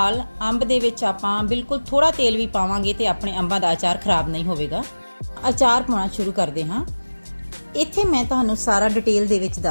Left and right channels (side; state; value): both; inverted; correlation -1.00